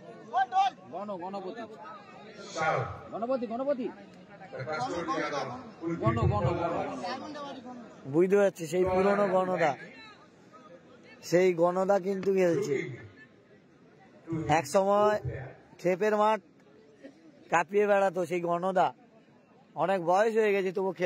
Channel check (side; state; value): both; identical; correlation 1.00